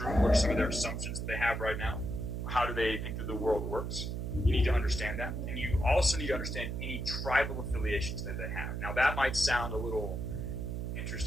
What are some of their assumptions that they have right now? How do they think that the world works? You need to understand that. And you also need to understand any tribal affiliations that they have. Now, that might sound a little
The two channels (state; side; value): noise; right; hum, 3 dB below the sound